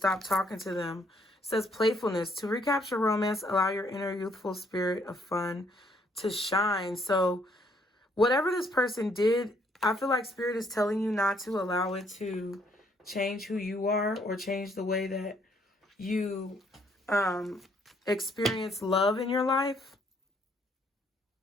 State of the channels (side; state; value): both; normal; correlation 0.68